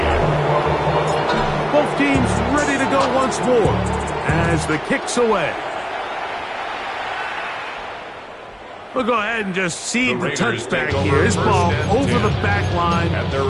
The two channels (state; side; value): identical; both; correlation 1.00